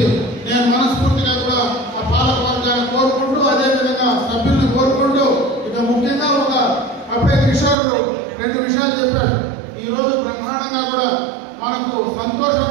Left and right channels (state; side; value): drops out; left; at 7.8 s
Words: నేను మనస్ఫూర్తిగా కూడా ఆ పాలక వర్గాన్ని కోరుకుంటూ అదేవిధంగా సభ్యులను కోరుకుంటూ ఇక ముఖ్యంగా అప్పుడే కిషోర్ 2 విషయాలు చెప్పాడు. ఈ రోజు బ్రహ్మాండంగా కూడా మనకు